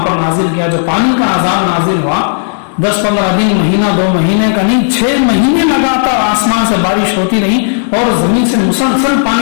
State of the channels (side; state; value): right; silent; digital silence